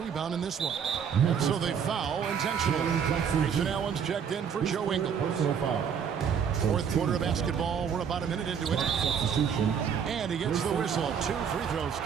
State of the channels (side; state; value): left; quieter; 7.4 dB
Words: in this one. And so they foul intentionally. Grayson Allen's checked in for Joe Ingles. Fourth quarter of basketball. We're about a minute into it. And he gets the whistle. 2 free throws